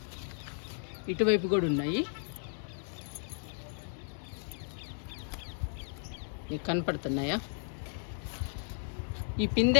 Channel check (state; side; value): silent; right; digital silence